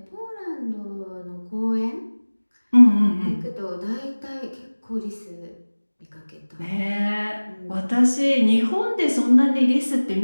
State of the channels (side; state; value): both; inverted; correlation -1.00